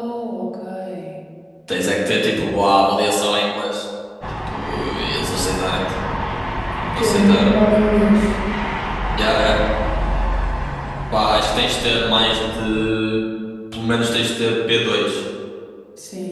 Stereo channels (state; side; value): identical; both; correlation 1.00